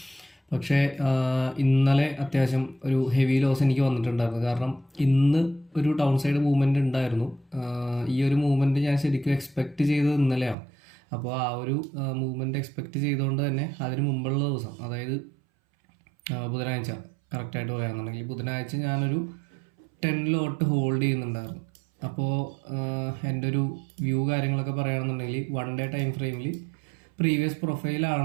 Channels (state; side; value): drops out; left; at 10.6 s